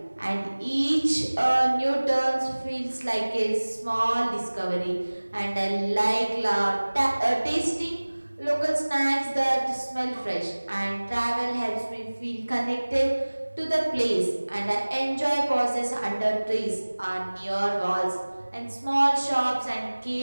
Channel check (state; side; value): inverted; both; correlation -1.00